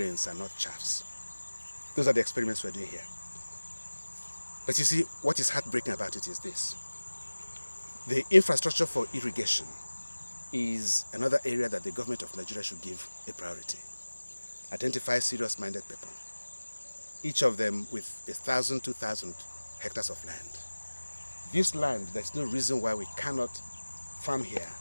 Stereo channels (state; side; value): inverted; both; correlation -1.00